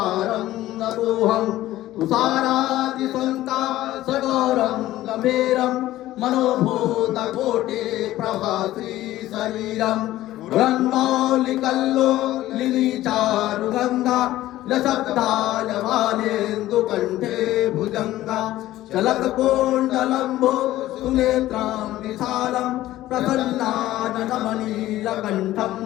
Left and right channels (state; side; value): quieter; right; 15.2 dB